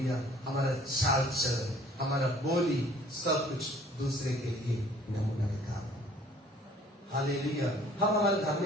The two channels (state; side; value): normal; both; correlation 0.55